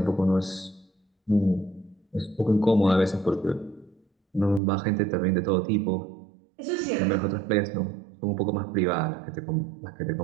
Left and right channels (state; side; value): drops out; left; at 4.6 s